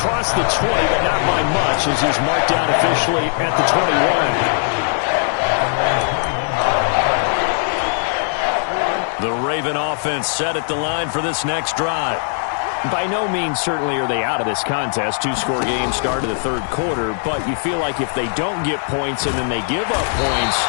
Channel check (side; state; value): right; silent; digital silence